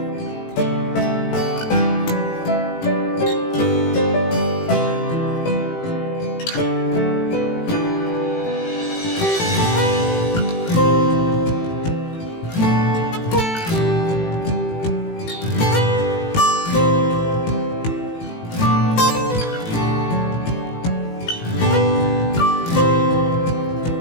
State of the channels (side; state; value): right; late; 18 ms